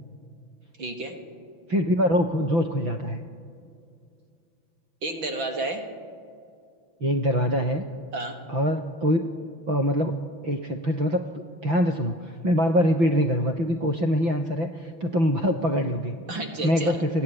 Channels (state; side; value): late; left; 6.0 ms